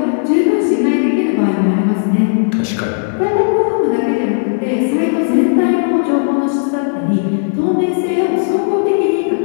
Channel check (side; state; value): right; silent; digital silence